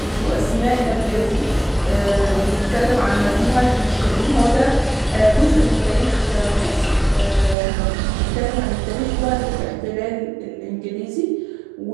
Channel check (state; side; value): drops out; left; at 7.6 s